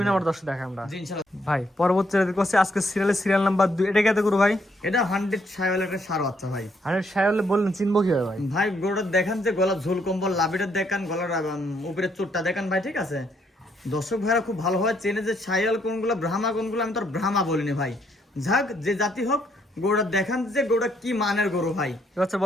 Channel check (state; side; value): normal; both; correlation 0.72